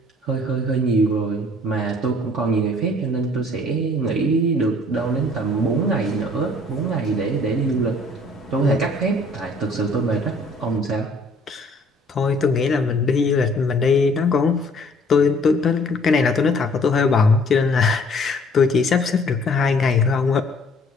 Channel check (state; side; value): normal; both; correlation 0.57